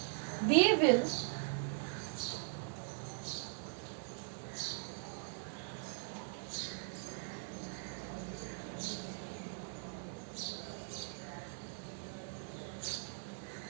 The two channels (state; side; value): silent; left; digital silence